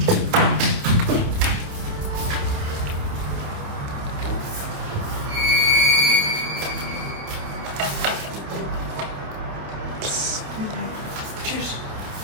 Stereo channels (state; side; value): late; left; 28 ms